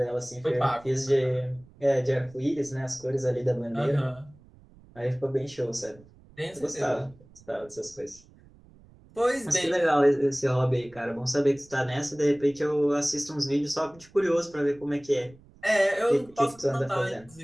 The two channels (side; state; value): right; noise; rumble, 25 dB below the sound